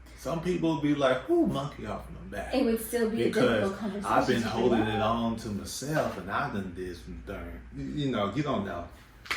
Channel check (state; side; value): identical; both; correlation 1.00